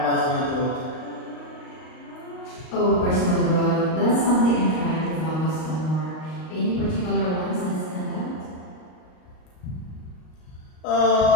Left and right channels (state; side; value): late; right; 38 ms